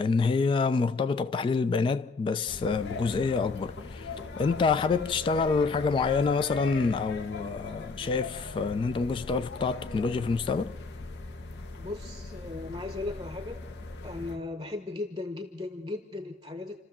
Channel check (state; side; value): quieter; right; 4.2 dB